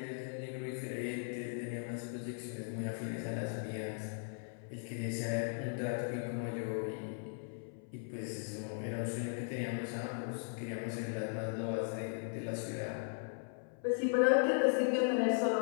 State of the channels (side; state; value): right; silent; 52 dB below the other